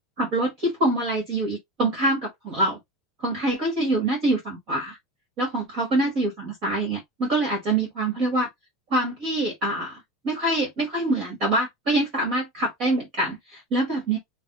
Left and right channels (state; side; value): normal; both; correlation 0.31